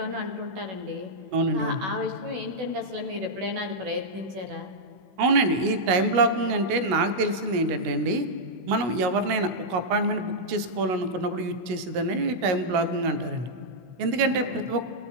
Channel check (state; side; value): late; left; 16 ms